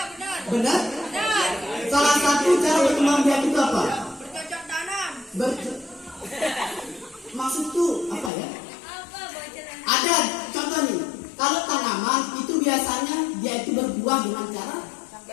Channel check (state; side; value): drops out; right; at 8.3 s